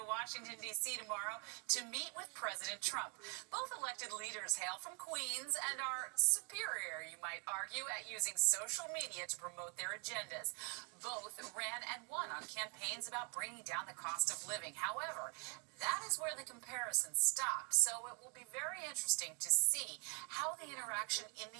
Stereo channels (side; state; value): left; quieter; 36.6 dB